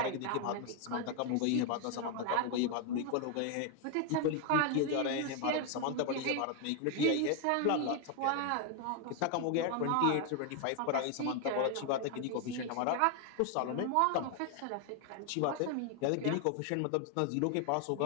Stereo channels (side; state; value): both; different; correlation 0.01